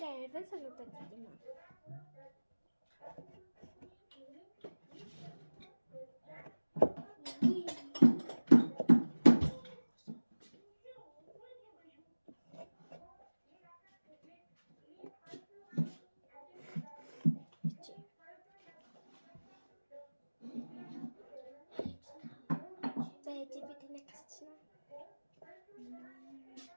аван сануудад юм аа.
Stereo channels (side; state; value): both; inverted; correlation -1.00